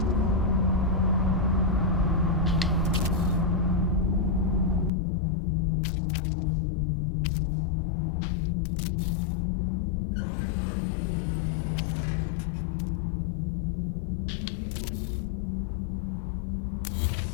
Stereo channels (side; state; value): right; drops out; at 4.9 s